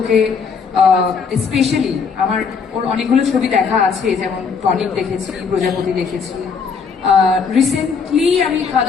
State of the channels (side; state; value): right; quieter; 5.7 dB